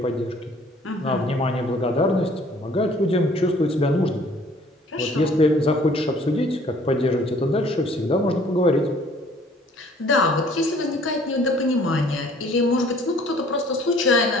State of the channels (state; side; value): normal; both; correlation 0.56